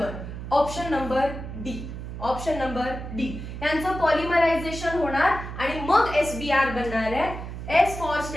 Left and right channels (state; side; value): noise; right; hum, 8 dB below the sound